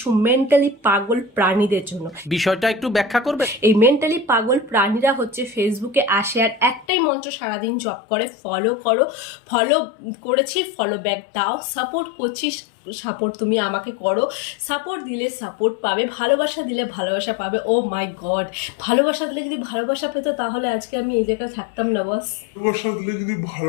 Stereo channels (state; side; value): drops out; right; at 6.9 s